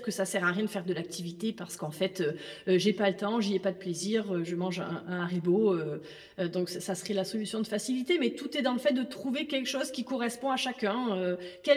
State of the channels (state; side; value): identical; both; correlation 1.00